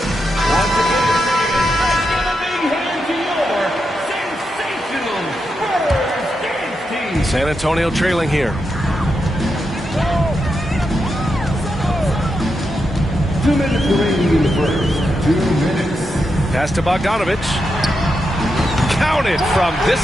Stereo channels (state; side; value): normal; both; correlation 0.85